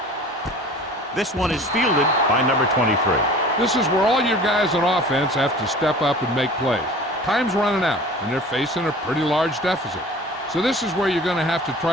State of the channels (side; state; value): both; normal; correlation 0.43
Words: This one is fielded by number 23. This is where all your guys on offense have to step up and make plays. Time's running out, and they're facing a pretty large deficit. So this is where you're going to have to